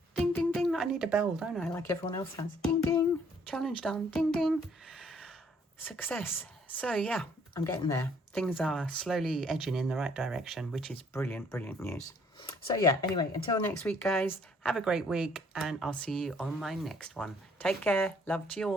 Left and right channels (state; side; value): normal; both; correlation 0.63